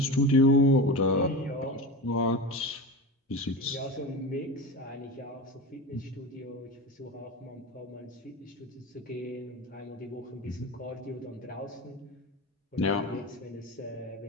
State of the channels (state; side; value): normal; both; correlation 0.26